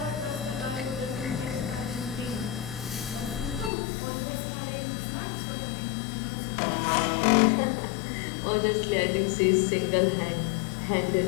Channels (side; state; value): right; drops out; at 3.7 s